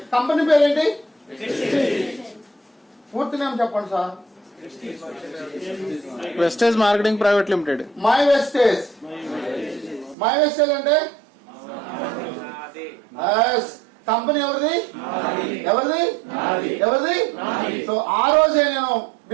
కంపెనీ పేరేంటి? పూర్తి నేమ్ చెప్పండి sir. Vestige marketing private limited. My Vestige. My Vestige అంటే కంపెనీ ఎవరిది? ఎవరిది? సో ఆ రోజే నేను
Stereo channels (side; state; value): left; drops out; at 10.2 s